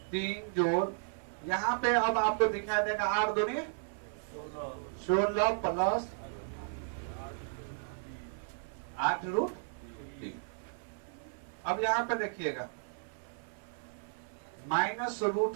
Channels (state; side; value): silent; left; 55 dB below the other